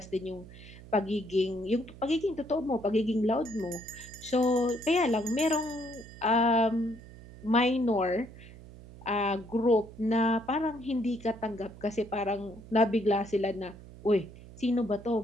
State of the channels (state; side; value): noise; right; hum, 18 dB below the sound